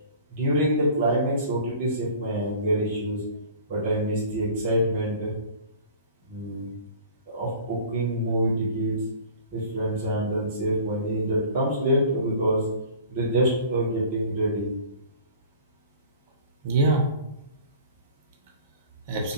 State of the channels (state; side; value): inverted; both; correlation -0.45